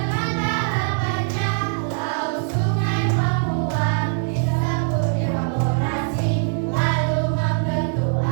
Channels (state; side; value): silent; left; 64 dB below the other